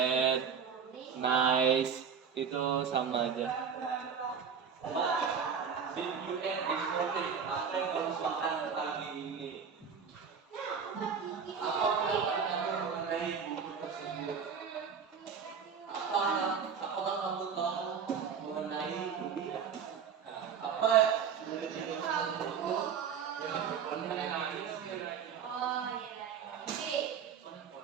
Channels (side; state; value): left; quieter; 6.7 dB